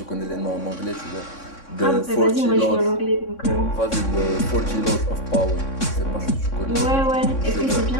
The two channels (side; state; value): right; late; 3.6 ms